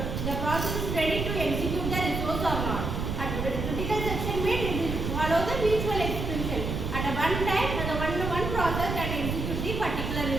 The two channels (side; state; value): right; noise; rumble, 3 dB below the sound